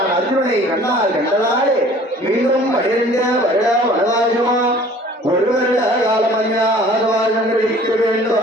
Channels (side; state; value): both; normal; correlation 0.50